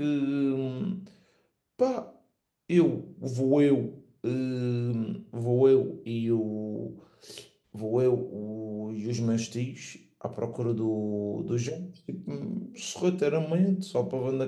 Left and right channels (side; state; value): both; identical; correlation 1.00